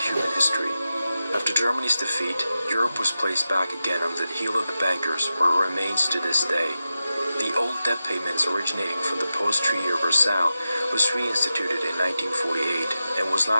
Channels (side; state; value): both; inverted; correlation -0.92